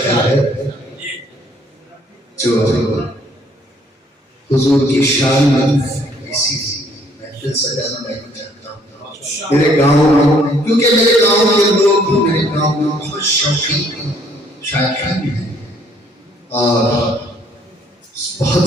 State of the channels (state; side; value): normal; both; correlation 0.63